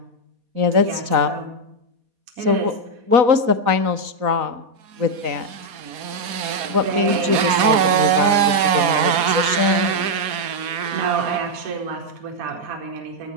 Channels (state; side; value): late; left; 4.2 ms